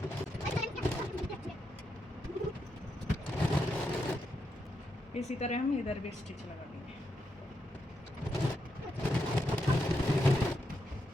इसी तरह हम इधर भी स्टिच लगा देंगे।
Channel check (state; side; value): normal; both; correlation 0.83